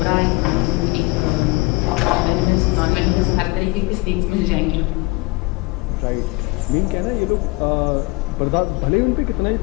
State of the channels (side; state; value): right; quieter; 23.9 dB